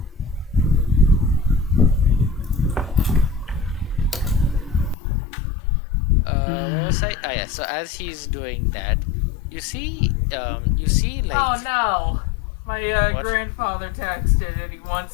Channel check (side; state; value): right; drops out; at 5.0 s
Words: What was I? Oh yeah. So as he's doing that, you see like. Oh no! My What? grandfather texted and he